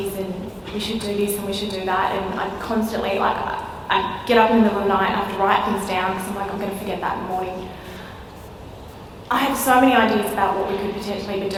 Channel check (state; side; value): identical; both; correlation 1.00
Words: and we should do this and we should do that, and I'm constantly I get up in the middle of the night and I have to write things down because I'm going to forget that in the morning. I have so many ideas about what we could potentially